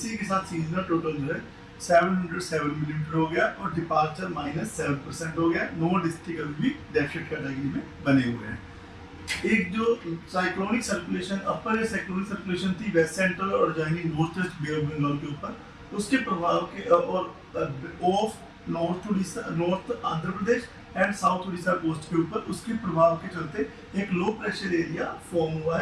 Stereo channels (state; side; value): identical; both; correlation 1.00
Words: के साथ सीजनल टोटल जो है 707 मिलीमीटर हो गया और डिपार्चर -7% हो गया। 9 डिस्ट्रिक्ट अभी भी डेफिसिट कैटेगरी में बने हुए हैं। एक जो cyclonic circulation upper cyclonic circulation थी वेस्ट सेंट्रल और adjoining north west bay of Bengal के ऊपर, उसके प्रभाव के और off north Andhra Pradesh and south Orissa coast के ऊपर उसके प्रभाव के चलते एक लो प्रेशर एरिया फॉर्म हुआ